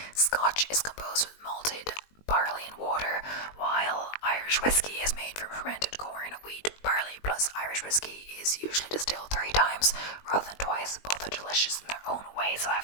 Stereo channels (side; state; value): right; late; 20 ms